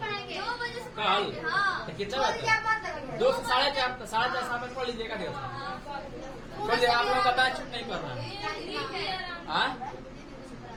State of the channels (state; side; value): identical; both; correlation 1.00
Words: कल, तो कितना बजे? 2 से 4:30 शाम में पढ़ लीजिएगा। देखिए आप लोगों का बैच छुट्टी नहीं कर रहा है।